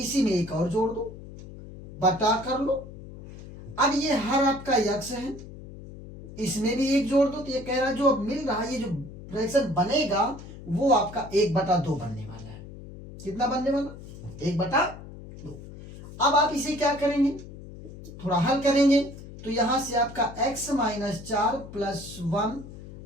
में एक और जोड़ दो, बटा कर लो। अब ये हर आपका x है, इसमें भी एक जोड़ दो, तो ये कह रहा है जो अब मिल रहा है, ये जो फ्रैक्शन बनेगा वो आपका 1/2 बनने वाला है। कितना बनने वाला, 1/2। अब आप इसे क्या करेंगे, थोड़ा हल करेंगे, तो यहां से आपका x माइनस 4 प्लस 1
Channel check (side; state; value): left; noise; hum, 15 dB below the sound